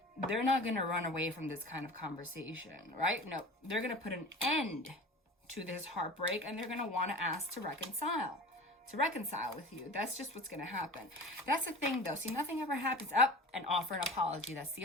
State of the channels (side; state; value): both; normal; correlation 0.36